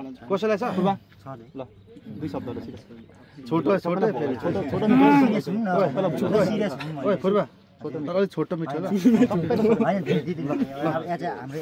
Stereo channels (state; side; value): identical; both; correlation 1.00